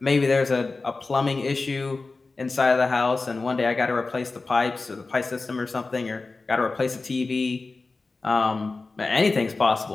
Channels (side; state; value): right; quieter; 3.7 dB